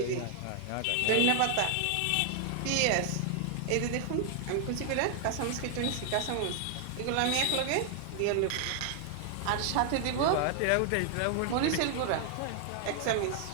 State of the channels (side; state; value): both; different; correlation 0.00